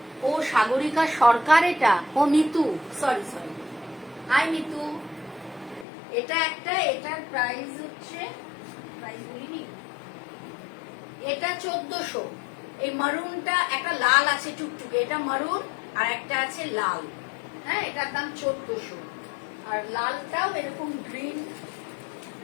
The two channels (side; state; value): right; drops out; at 5.9 s